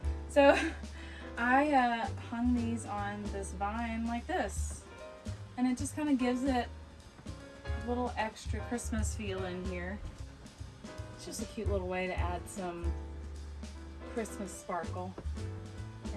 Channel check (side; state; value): both; identical; correlation 1.00